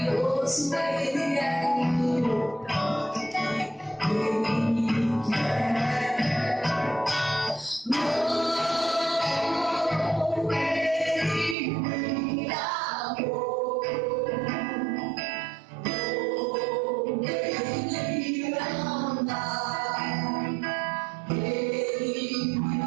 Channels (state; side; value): drops out; left; at 11.6 s